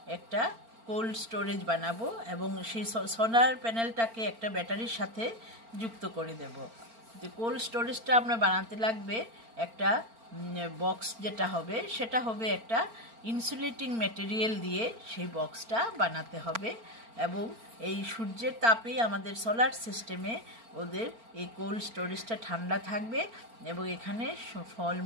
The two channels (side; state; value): left; late; 4.4 ms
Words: একটা কোল্ড স্টোরেজ বানাবো এবং সেই সোলার প্যানেলটাকে একটা ব্যাটারির সাথে যুক্ত করে দেব। যে কোল্ড স্টোরেজটা আমরা বানাতে লাগবে একটা বক্স, যেটা হবে সেটা হবে একটা ইনসুলেটিং ম্যাটেরিয়াল দিয়ে সেই বক্সটা বানাতে হবে এবং এই সূর্যের তাপেই আমাদের সোলার সিস্টেমে ওদের এই কোল্ড স্টোরেজটা ঠান্ডা থাকবে এবং এখানে